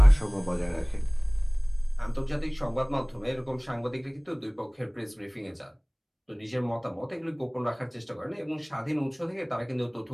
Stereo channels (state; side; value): identical; both; correlation 1.00